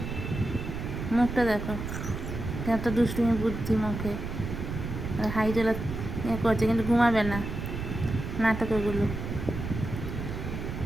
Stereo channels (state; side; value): noise; right; rumble, 5 dB below the sound